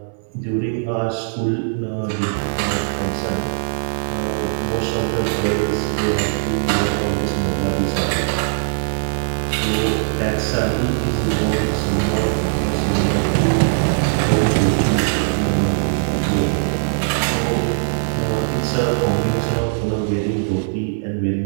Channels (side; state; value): left; silent; 63 dB below the other